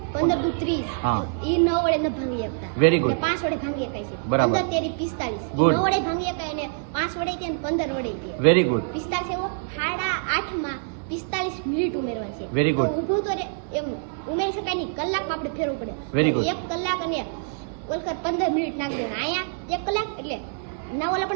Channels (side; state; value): left; silent; digital silence